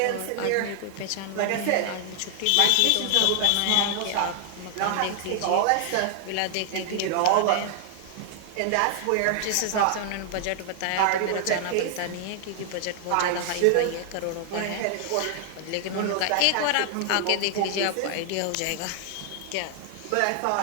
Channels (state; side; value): different; both; correlation 0.00